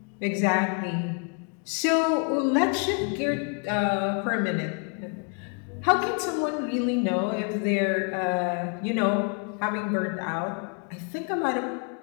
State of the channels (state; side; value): quieter; right; 37.9 dB